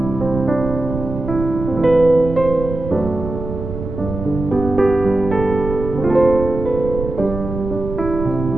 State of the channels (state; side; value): noise; right; rumble, 7 dB below the sound